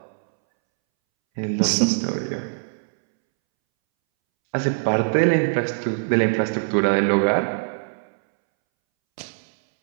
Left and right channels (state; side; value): silent; left; 64 dB below the other